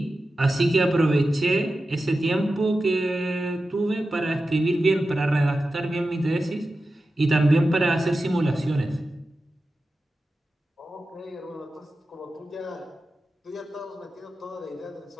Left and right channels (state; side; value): normal; both; correlation 0.93